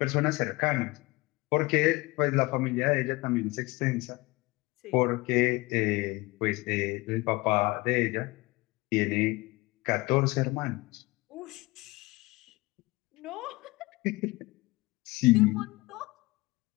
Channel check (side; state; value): right; quieter; 22.9 dB